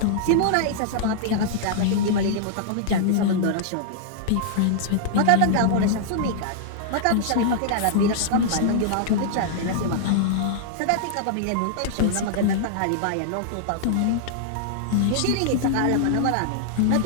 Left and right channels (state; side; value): different; both; correlation -0.01